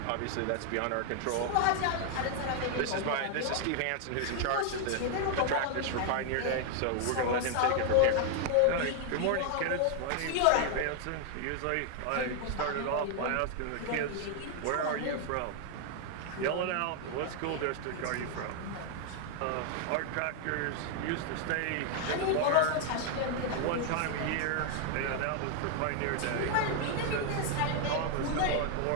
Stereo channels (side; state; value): both; different; correlation 0.00